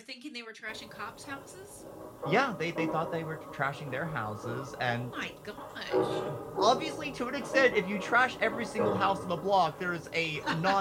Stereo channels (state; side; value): identical; both; correlation 1.00